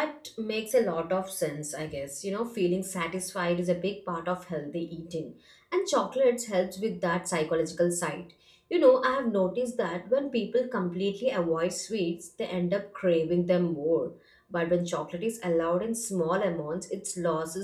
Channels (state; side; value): identical; both; correlation 1.00